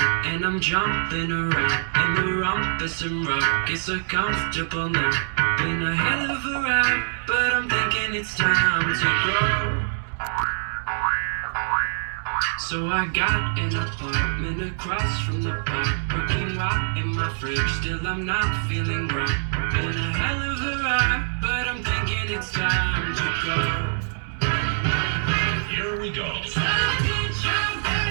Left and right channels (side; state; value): left; silent; digital silence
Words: and I'm jumping around in the rumpus and rock. It's so comfortable now. Been a hell of a ride, but I'm thinking it's time to grow. So I got an apartment across from the park, cooking right in my fridge. Still I'm not feeling right. Been a hell of a ride, but I'm thinking it's time to go. Here we go.